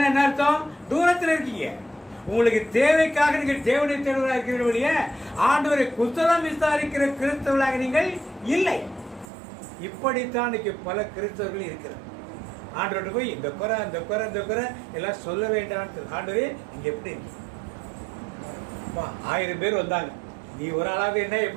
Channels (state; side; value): drops out; left; at 9.3 s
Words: என்ன அர்த்தம்? தூரத்தில் இருக்கீங்க. உங்களுக்கு தேவைக்காக நீங்கள் தேவனை தேடுவதாக இருக்கிற வழிய ஆண்டவரை குசலம் விசாரிக்கிற கிறிஸ்தவர்களாக நீங்கள் இல்லை. இப்படித்தான் இன்னைக்கு பல கிறிஸ்தவர்கள் இருக்கிறார். ஆண்டவர்கிட்ட போய் இந்த குறை அந்த குறை இந்த குறை எல்லாம் சொல்ல வேண்டாம். ஆண்டவரே நீங்க எப்படி 1000 பேர் வந்தாங்க, நீ ஒரு ஆளாவது என்ன